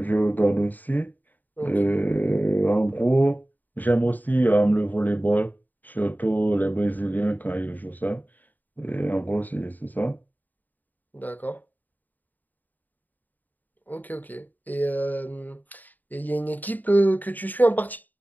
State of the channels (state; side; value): late; right; 0.085 ms